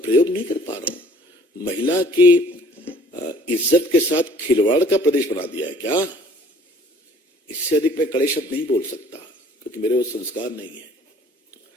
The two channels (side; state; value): both; normal; correlation 0.55